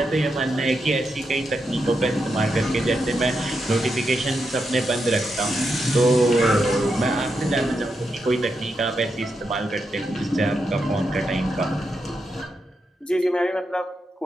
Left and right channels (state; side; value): normal; both; correlation 0.84